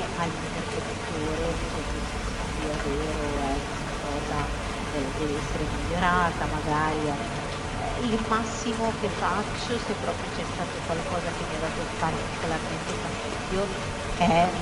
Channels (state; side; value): identical; both; correlation 1.00